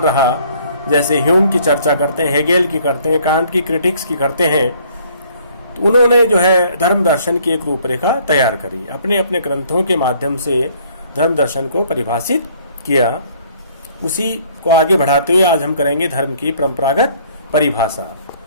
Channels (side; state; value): both; inverted; correlation -0.60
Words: रहा। जैसे ह्यूम की चर्चा करते हैं, हेगेल की करते हैं, कांट की क्रिटिक्स की करते हैं। तो उन्होंने जो है धर्म दर्शन की एक रूपरेखा तैयार करी, अपने अपने ग्रंथों के माध्यम से धर्म दर्शन को परिभाषित किया। उसी को आगे बढ़ाते हुए आज हम करेंगे धर्म की परंपरागत परिभाषा।